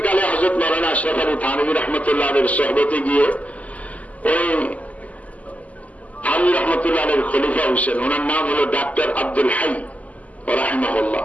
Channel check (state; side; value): late; right; 0.072 ms